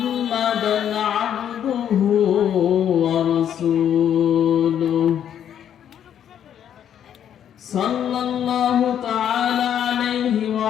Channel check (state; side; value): quieter; right; 9.6 dB